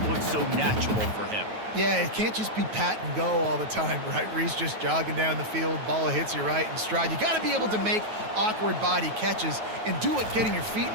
looks so natural for him. Yeah, it can't just be pat and go all the time, right? Reese just jogging down the field, ball hits you right in stride. You got to be able to make awkward body catches and do it getting your feet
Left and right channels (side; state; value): left; late; 9.3 ms